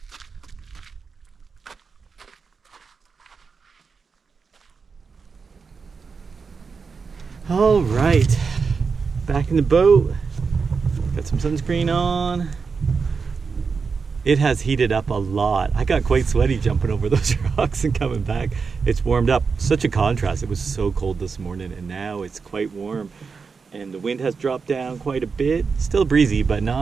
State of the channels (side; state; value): left; quieter; 5.2 dB